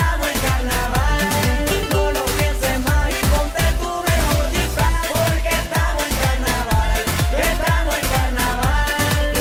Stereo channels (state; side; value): identical; both; correlation 1.00